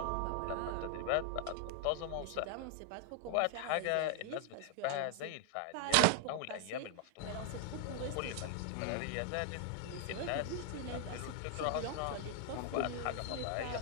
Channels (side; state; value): both; different; correlation 0.00